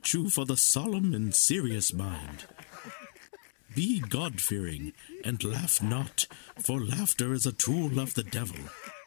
for the solemn and serious mind. Be God-fearing, and laugh not, for laughter is a tool of the devil.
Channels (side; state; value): right; silent; digital silence